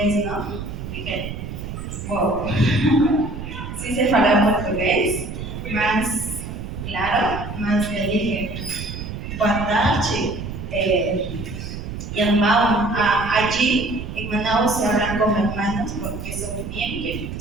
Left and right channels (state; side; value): noise; right; rumble, 8 dB below the sound